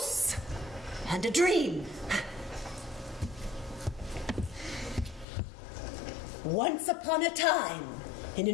And a dream. Once upon a time, in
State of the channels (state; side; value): drops out; right; at 5.2 s